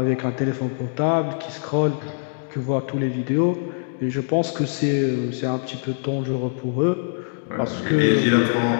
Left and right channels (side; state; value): right; silent; digital silence